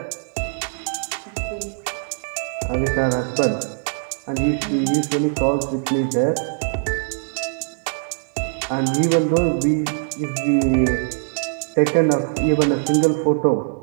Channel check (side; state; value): left; silent; 64 dB below the other